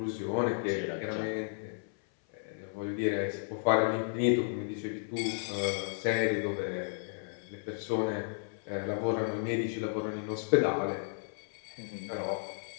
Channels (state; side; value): silent; right; 56 dB below the other